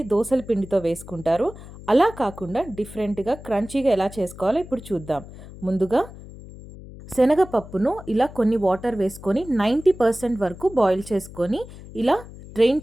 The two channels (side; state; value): left; noise; hum, 16 dB below the sound